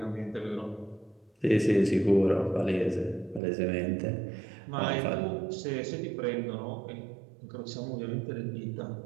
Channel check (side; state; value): left; drops out; at 3.4 s